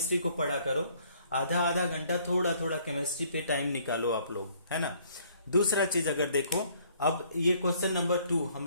को पढ़ा करो, आधा घंटा थोड़ा थोड़ा केमिस्ट्री पे टाइम निकालो आप लोग, है ना। दूसरा चीज अगर देखो, अब ये क्वेश्चन नंबर 2 हम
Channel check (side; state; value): both; inverted; correlation -0.62